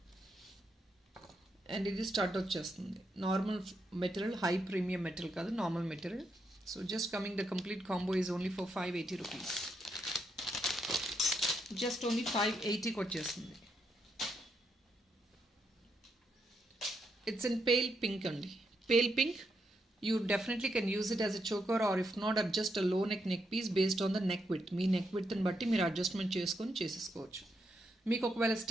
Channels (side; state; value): both; normal; correlation 0.80